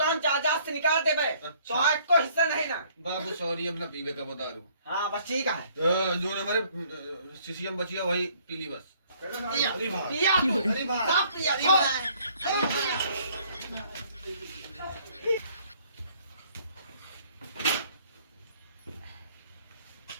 हम चाचा से निकाल दे भाई अच्छा। तो आज को हिस्सा नहीं ना बाबू सॉरी अब ना पीवे का बता दूं हाँ बस ठीक है जो हमारे सीसीएम बची है वही पीली बस पिया अरे भाई पिया अरे भाई सब पिया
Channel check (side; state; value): both; inverted; correlation -0.61